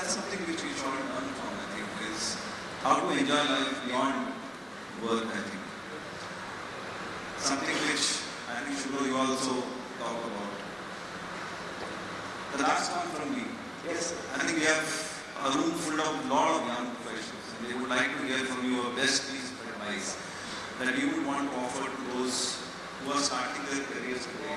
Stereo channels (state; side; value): identical; both; correlation 1.00